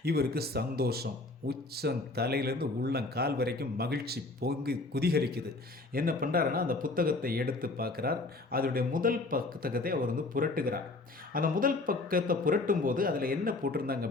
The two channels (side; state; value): right; quieter; 3.2 dB